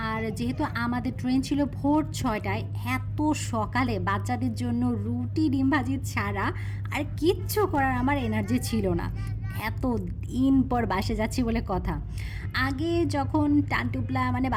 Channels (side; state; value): both; identical; correlation 1.00